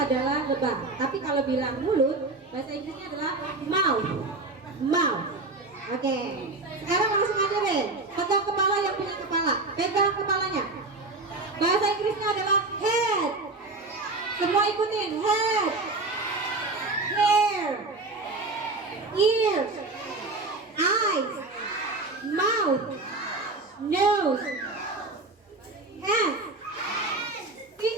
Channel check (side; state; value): left; quieter; 3.3 dB